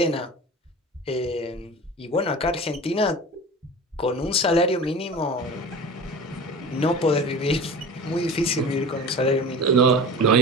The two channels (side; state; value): both; normal; correlation 0.35